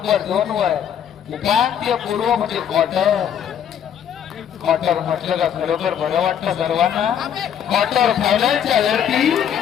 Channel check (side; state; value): right; quieter; 9.0 dB